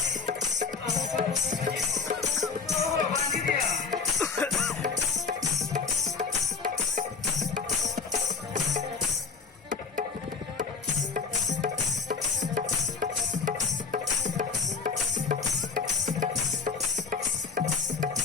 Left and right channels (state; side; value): quieter; right; 5.2 dB